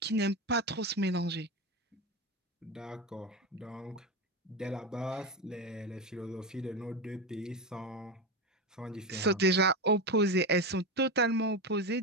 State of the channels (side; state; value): both; normal; correlation 0.17